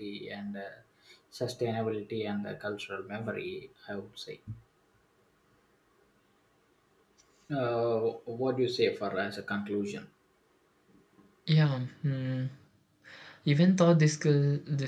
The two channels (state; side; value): identical; both; correlation 1.00